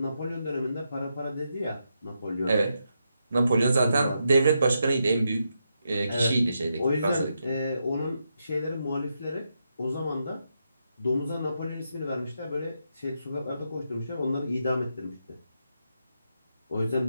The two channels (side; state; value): both; inverted; correlation -0.83